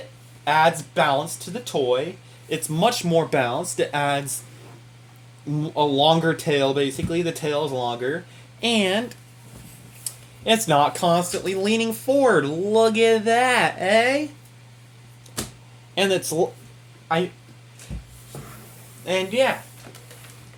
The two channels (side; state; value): both; identical; correlation 1.00